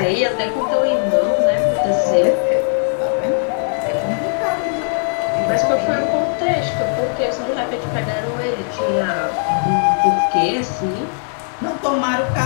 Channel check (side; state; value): right; silent; 59 dB below the other